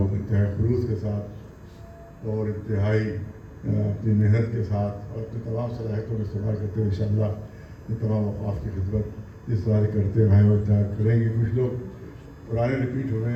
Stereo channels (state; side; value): identical; both; correlation 1.00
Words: انتہائی خلوص کے ساتھ اور انتہائی اپنی محنت کے ساتھ اور اپنی تمام صلاحیتوں کا استعمال کرتے ہوئے انشاءاللہ یہ تمام اوقاف کی خدمت جس طرح سے کرتے ہیں وہ کریں گے. کچھ لوگ پرانے ریپیٹ ہوئے